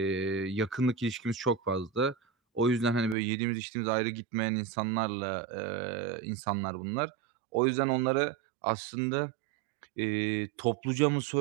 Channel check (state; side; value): drops out; left; at 3.2 s